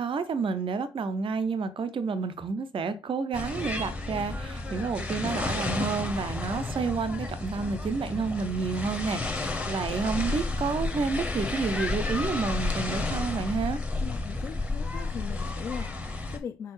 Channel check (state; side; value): normal; both; correlation 0.69